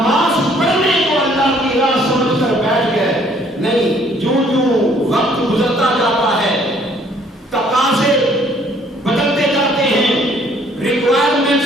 پڑھنے کو اللہ کی راہ سمجھ کر بیٹھ گئے۔ نہیں، جو وقت گزرتا جاتا ہے، تقاضے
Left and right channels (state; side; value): normal; both; correlation 0.61